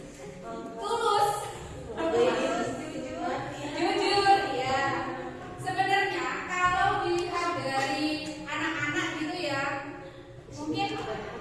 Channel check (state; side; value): identical; both; correlation 1.00